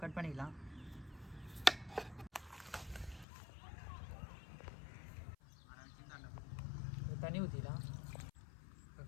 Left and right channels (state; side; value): drops out; right; at 3.2 s